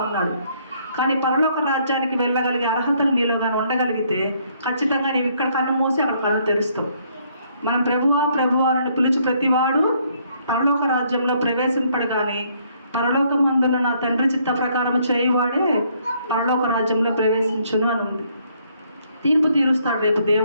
ఉన్నాడు. కానీ పరలోక రాజ్యానికి వెళ్ళగలిగే అర్హతలు నీలో కానీ ఉండగలిగితే ఖచ్చితంగా నీవు ఇక్కడ కన్ను మూసి అక్కడ కళ్ళు తెరుస్తావు. మనం ప్రభువా ప్రభువా అని పిలిచి ప్రతివాడు పరలోక రాజ్యంలో ప్రవేశింపడు. కానీ పరలోకం అందున్న నా తండ్రి చిత్త ప్రకారం చేయువాడే పరలోక రాజ్యంలో ప్రవేశించును అని ఉంది. తీర్పు తీరుస్తాడు రేపు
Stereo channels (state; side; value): inverted; both; correlation -0.67